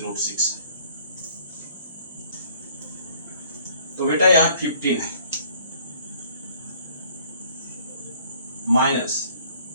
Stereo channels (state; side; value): inverted; both; correlation -0.58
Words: है। तो बेटा यहाँ 15 है माइनस